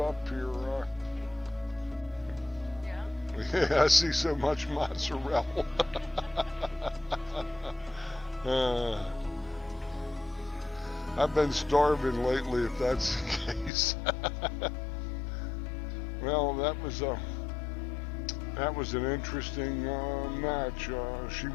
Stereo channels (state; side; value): drops out; right; at 13.7 s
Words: here. Yeah, I see so much mozzarella. I've been starving lately, if that's the case. Well, that was an interesting match. She